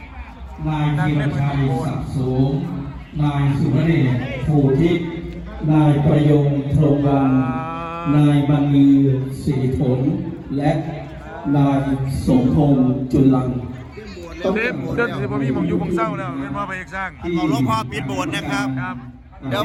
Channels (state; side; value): identical; both; correlation 1.00